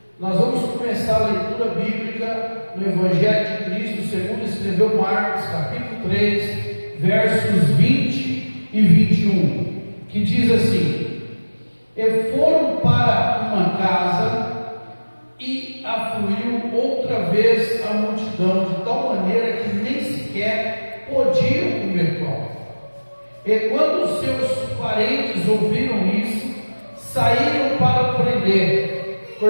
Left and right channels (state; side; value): inverted; both; correlation -1.00